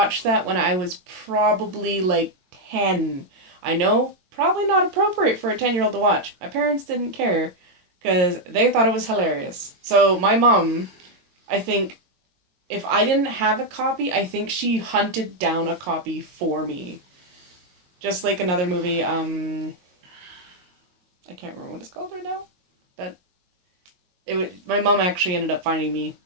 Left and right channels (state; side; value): late; left; 22 ms